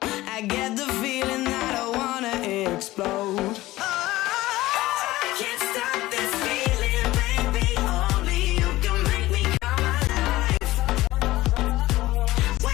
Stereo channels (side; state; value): right; quieter; 17.5 dB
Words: I get the feeling that I wanna explode. I can't stop this feeling, baby. Only you can make me come alive.